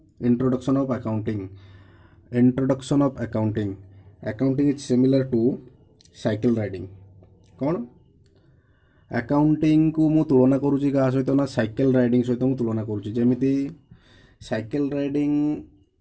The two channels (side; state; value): both; identical; correlation 1.00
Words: introduction of accounting. Introduction of accounting accounting is similar to cycle riding. कौन अकाउंटिंग को मु तुलना करुँची क्या सहित ना साइकिल राइडिंग सहित मु तुलना करुँची। जेमिति साइकिल राइडिंग